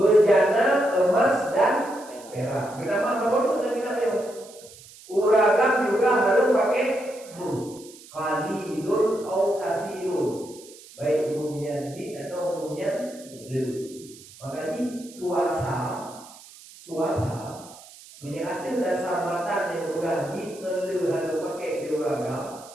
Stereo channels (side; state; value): right; noise; hiss, 20 dB below the sound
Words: emas dan perak. Kenapa kamu tuh dan kita yo? Uragam juga harus pakai qalilun atau katsirun. Baik umumnya di atau umumnya lu. Makanya suasa menyatakan dasar mata yang bukan di lu harus pakai di uragam.